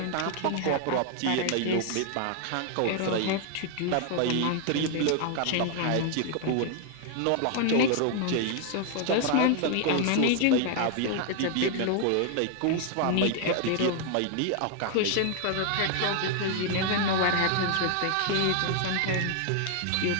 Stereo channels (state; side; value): different; both; correlation 0.00